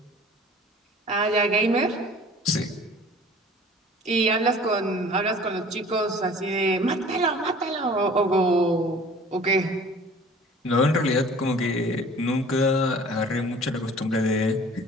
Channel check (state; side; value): normal; both; correlation 0.47